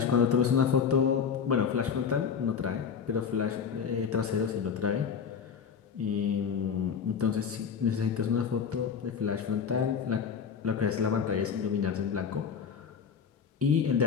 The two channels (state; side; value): quieter; right; 6.8 dB